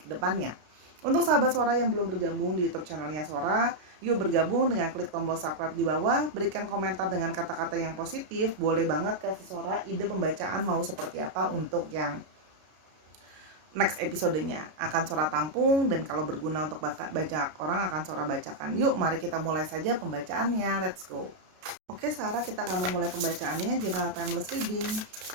depannya. Untuk sahabat Sora yang belum bergabung di YouTube channelnya Sora, yuk bergabung dengan klik tombol subscribe di bawah, berikan komentar dengan kata-kata yang positif, boleh banget kasih Sora ide pembacaan mau seperti apa untuk yang next episodenya. Akan Sora tampung, dan kalau berguna untuk banyak orang akan Sora bacakan. Yuk mari kita mulai saja pembacaannya, let's go. Oke Sarah, kita akan memulai pembacaannya General Timeless Reading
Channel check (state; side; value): late; left; 32 ms